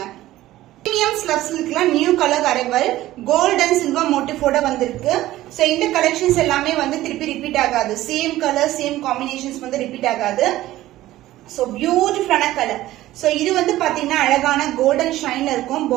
Premium slab silkல new colour arrival gold and silver மோட்டிஃபோட வந்திருக்கு. சோ இந்த கலெக்ஷன்ஸ் எல்லாமே வந்து திருப்பி ரிப்பீட் ஆகாது. சேம் கலர் சேம் காம்பினேஷன்ஸ் வந்து ரிப்பீட் ஆகாது. சோ பியூட்டிஃபுல்லான கலர். சோ இது வந்து பாத்தீங்கன்னா அழகான கோல்டன் ஷைன்ல இருக்கும்.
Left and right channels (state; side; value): quieter; left; 15.5 dB